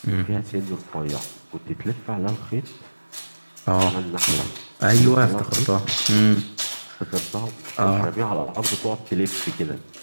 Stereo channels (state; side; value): inverted; both; correlation -1.00